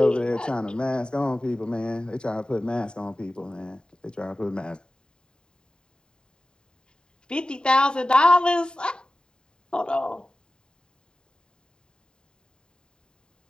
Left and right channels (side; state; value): right; late; 0.048 ms